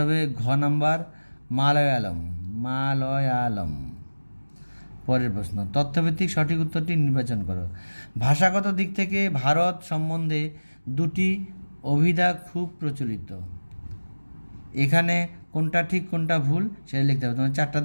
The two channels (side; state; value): both; inverted; correlation -1.00